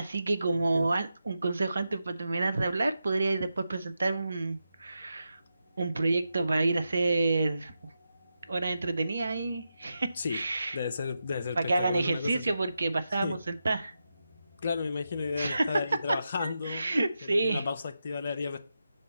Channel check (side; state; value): both; inverted; correlation -0.88